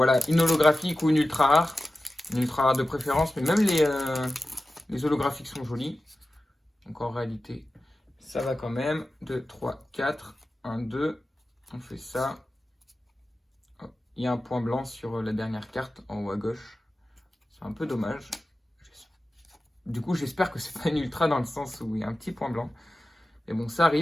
une holographique ou une ultra rare. Une ultra rare de préférence, mais même les holographiques sont jolies. Donc en réalité, ça va quand même. 2, 3, 4. 1, 2. On fait ça. Hop. Il y a un point blanc sur la dernière carte en haut à gauche. C'est un peu dommage. Du coup, j'espère que c'est pas une ultra dans le sens où il y a un petit point blanc. Mais bon, ça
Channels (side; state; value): both; normal; correlation 0.94